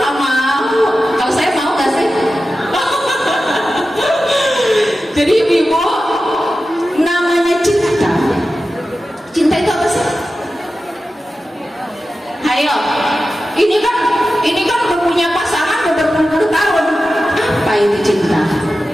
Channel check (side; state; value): both; normal; correlation 0.93